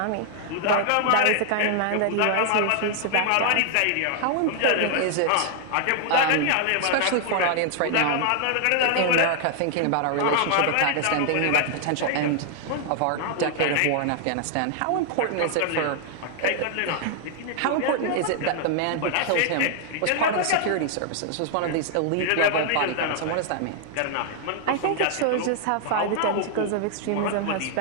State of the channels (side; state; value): both; different; correlation 0.00